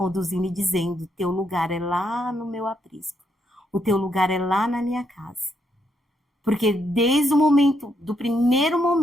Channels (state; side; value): normal; both; correlation 0.77